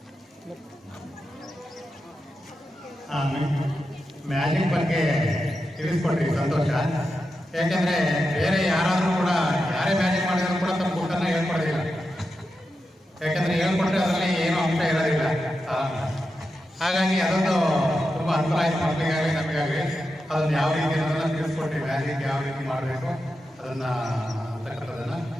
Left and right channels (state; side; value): normal; both; correlation 0.89